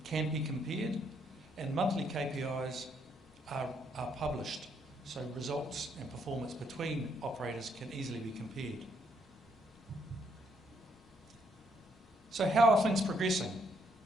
can be compared, and monthly KPIs are published, so results and performance between operators can easily be compared. So how are things progressing?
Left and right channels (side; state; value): both; normal; correlation 0.72